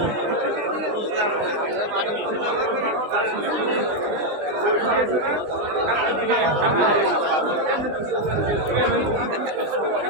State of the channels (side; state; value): left; late; 19 ms